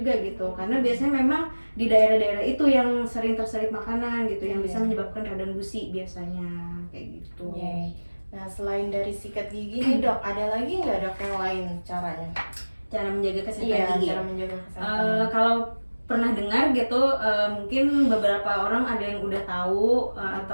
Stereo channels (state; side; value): inverted; both; correlation -1.00